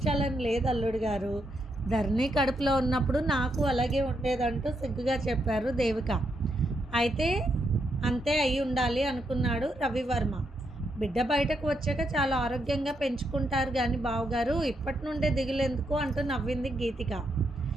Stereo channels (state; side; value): normal; both; correlation 0.80